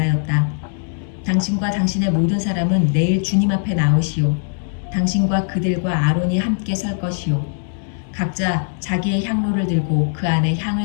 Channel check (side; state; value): right; silent; digital silence